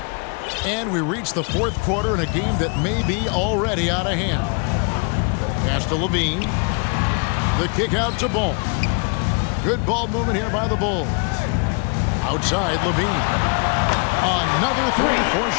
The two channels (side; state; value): right; quieter; 35.8 dB